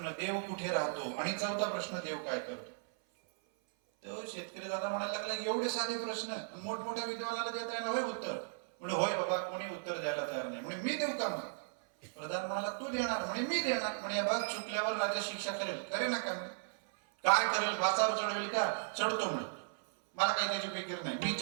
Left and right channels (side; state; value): left; silent; 54 dB below the other